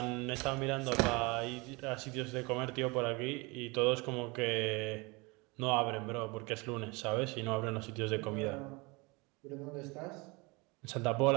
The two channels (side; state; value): left; quieter; 26.4 dB